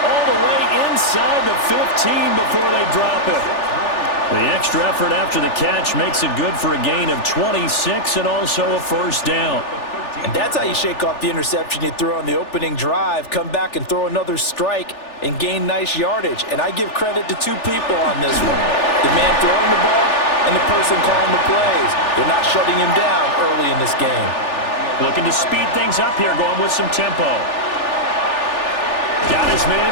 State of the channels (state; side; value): late; right; 3.4 ms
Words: all the way inside the 15 before they drop it. The extra effort after the catch makes it good for a gain of 26 and also a 1st down. And that's how you shake off the interception you threw on the opening drive, come back and throw another strike and gain nice yardage. And I give credit to 2 people on this one. The man throwing the ball and the person calling the plays. They're not shutting him down early in this game. Looking to speed things up here, going with some tempo. Got his man